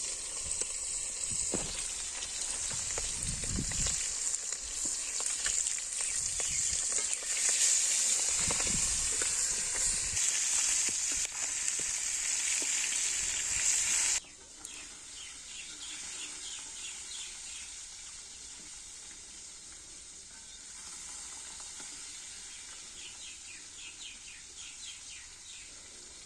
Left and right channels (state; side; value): identical; both; correlation 1.00